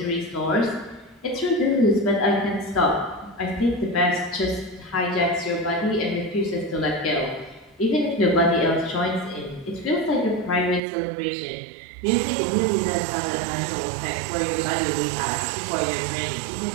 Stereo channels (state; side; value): drops out; left; at 10.8 s